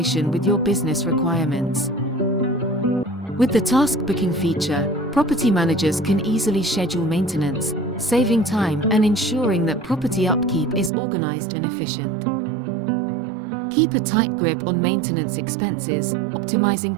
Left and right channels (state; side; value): drops out; left; at 10.9 s